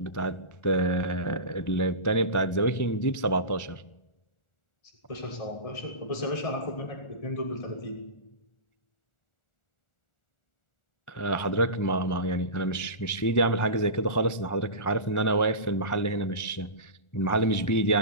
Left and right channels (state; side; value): late; right; 1.4 ms